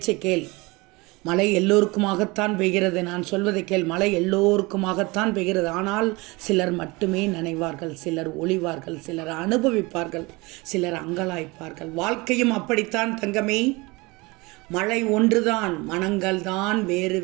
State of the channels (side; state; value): left; quieter; 24.4 dB